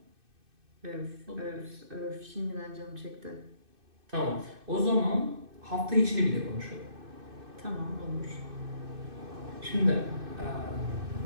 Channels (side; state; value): left; late; 2.6 ms